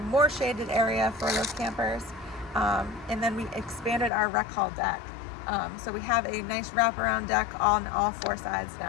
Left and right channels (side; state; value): right; drops out; at 4.1 s